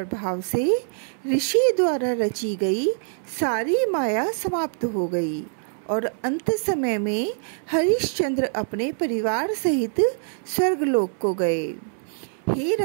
से ऋषि द्वारा रची गई सारी माया समाप्त हो गई और अंत समय में हरिश्चंद्र अपने परिवार सहित स्वर्गलोक को गए। हे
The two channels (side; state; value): left; silent; 62 dB below the other